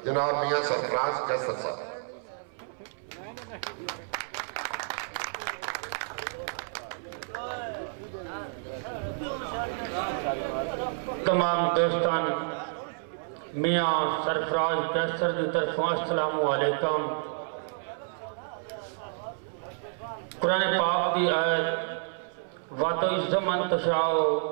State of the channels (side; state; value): left; silent; 58 dB below the other